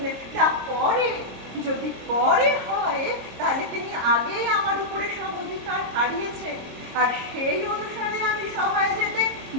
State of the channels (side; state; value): left; late; 26 ms